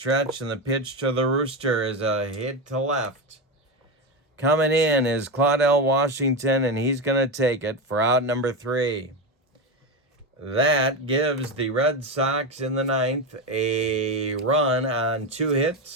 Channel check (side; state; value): both; normal; correlation 0.15